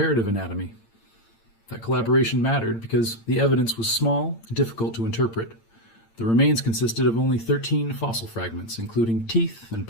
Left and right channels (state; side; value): late; right; 8.8 ms